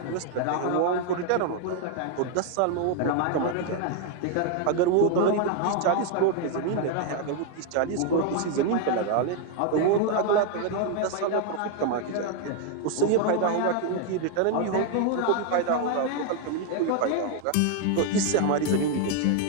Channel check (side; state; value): both; different; correlation 0.00